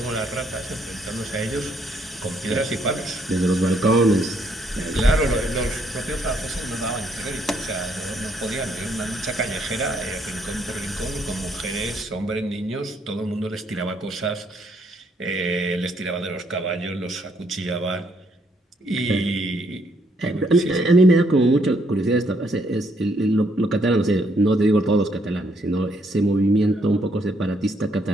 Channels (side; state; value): both; normal; correlation 0.71